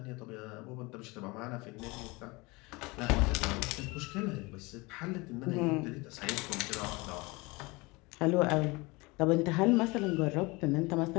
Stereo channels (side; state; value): right; quieter; 24.8 dB